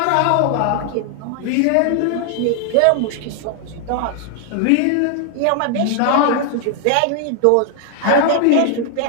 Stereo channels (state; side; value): different; both; correlation 0.00